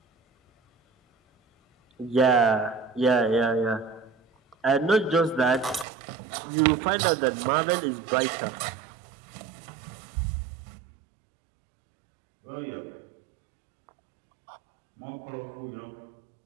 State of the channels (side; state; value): left; drops out; at 5.9 s